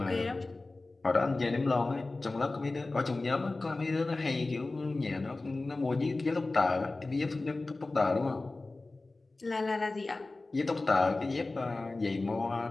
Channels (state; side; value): quieter; right; 3.2 dB